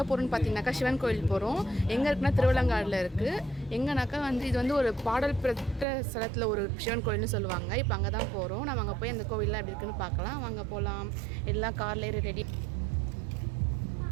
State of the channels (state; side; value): drops out; left; at 5.9 s